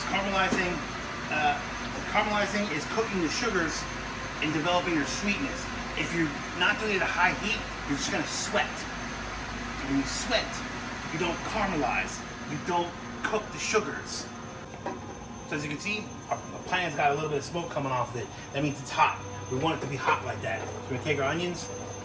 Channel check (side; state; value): both; identical; correlation 1.00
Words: caramelizing is cooking the sugars and developing their sweetness. If you're not doing it at a high heat, you're just going to sweat. And when you sweat, you don't caramelize. You don't cook the sugars. So as you can see, our pan's got a little bit of smoke coming off of it. That means it's hot. We want it to be hot like that. So we're going to take our onions,